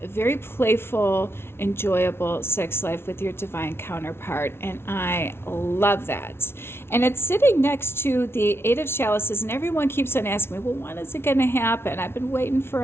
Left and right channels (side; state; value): right; late; 0.12 ms